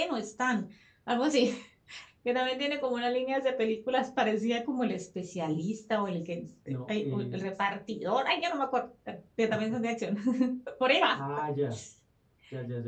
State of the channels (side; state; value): both; identical; correlation 1.00